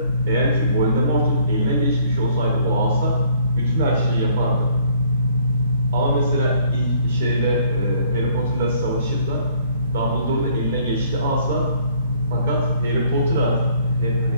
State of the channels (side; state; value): both; inverted; correlation -0.61